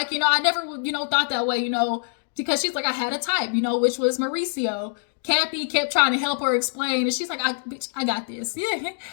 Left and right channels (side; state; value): right; silent; digital silence